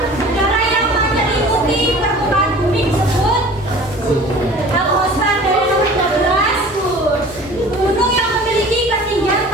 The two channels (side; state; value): both; normal; correlation 0.44